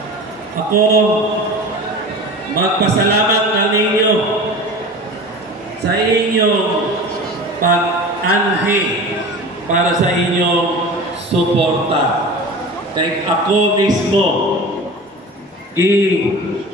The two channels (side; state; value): both; normal; correlation 0.35